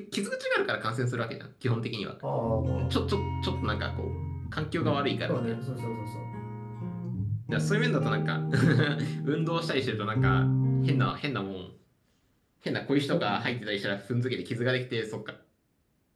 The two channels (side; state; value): both; identical; correlation 1.00